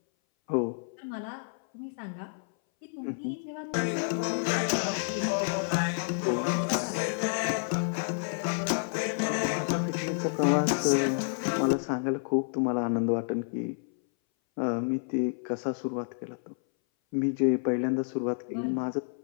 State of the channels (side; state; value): right; silent; 58 dB below the other